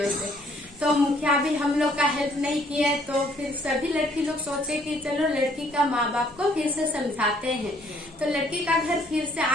तो मुखिया भी हम लोग का हेल्प नहीं किए, तो फिर सभी लड़की लोग सोचे कि चलो लड़की का माँ बाप को फिर से समझाते हैं। तो लड़की का घर फिर से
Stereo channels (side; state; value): both; normal; correlation 0.64